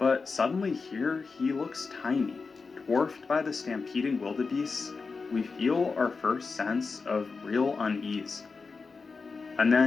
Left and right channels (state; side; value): quieter; right; 4.6 dB